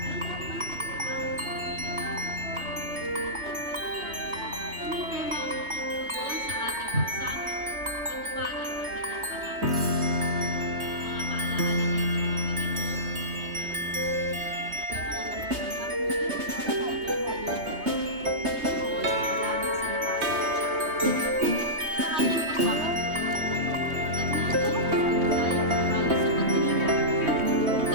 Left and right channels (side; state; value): left; late; 3.2 ms